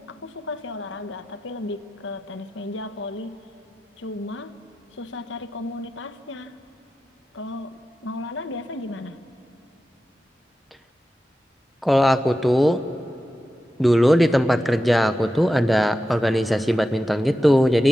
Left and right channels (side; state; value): both; normal; correlation 0.91